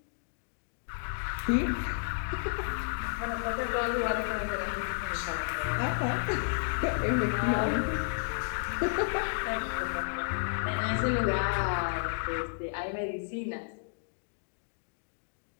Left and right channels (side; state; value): right; silent; digital silence